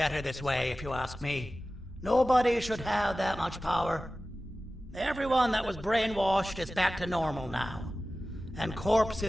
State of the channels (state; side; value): normal; both; correlation 0.96